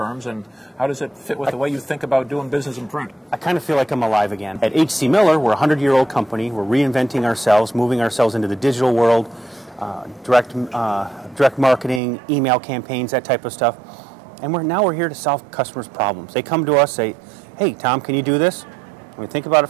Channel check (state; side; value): drops out; left; at 12.0 s